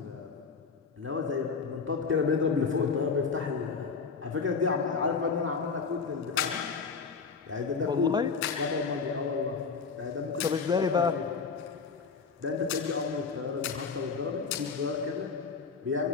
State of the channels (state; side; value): quieter; right; 5.2 dB